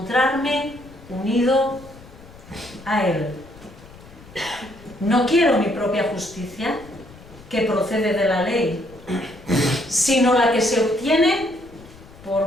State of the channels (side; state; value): left; noise; rumble, 21 dB below the sound